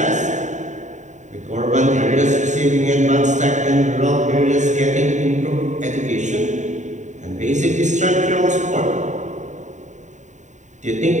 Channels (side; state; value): left; late; 0.35 ms